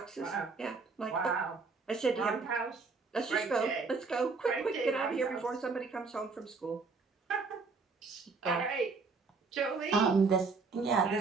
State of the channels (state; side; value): quieter; left; 4.4 dB